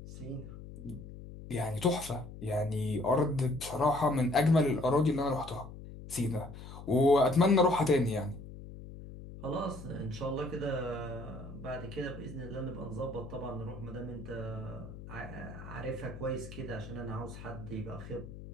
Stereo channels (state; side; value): noise; left; hum, 13 dB below the sound